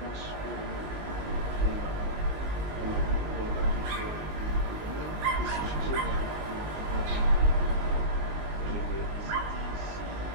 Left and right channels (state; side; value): late; left; 19 ms